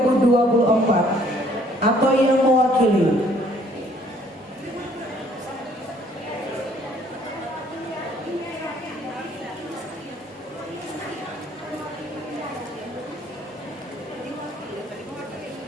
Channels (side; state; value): both; normal; correlation 0.61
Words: atau yang mewakili.